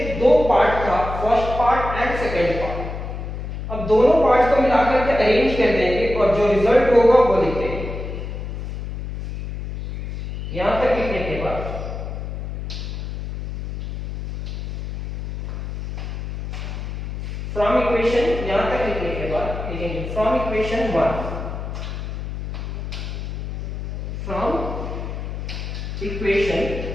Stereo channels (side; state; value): left; noise; hum, 6 dB below the sound